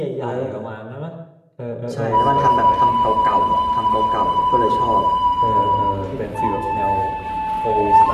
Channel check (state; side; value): identical; both; correlation 1.00